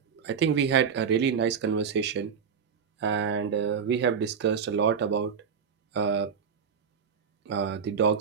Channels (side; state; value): left; quieter; 6.7 dB